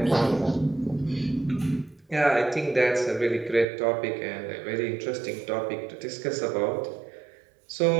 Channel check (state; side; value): drops out; left; at 3.7 s